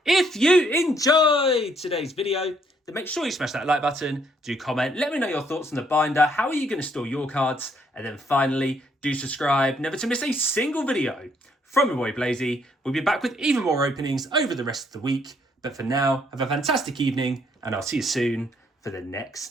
if you enjoyed today's video, then make sure you smash that like button, do comment, let me know your thoughts on the binder, how are you going to store your cards, and then finally do subscribe never to miss a single video from your boy Blazey. We'll be back with even more openings over the rest of the week. But for now, have a fantastic evening, and I'll see you soon for the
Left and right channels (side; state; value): both; normal; correlation 0.69